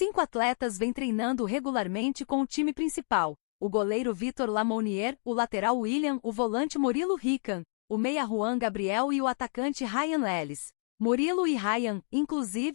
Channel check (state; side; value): silent; right; 58 dB below the other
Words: atletas vêm treinando regularmente com o time principal: o goleiro Vitor Lamounier, o lateral William, o volante Murilo Rican, o meia Juan Gabriel e o atacante Ryan Lelis. Murilo e Ryan,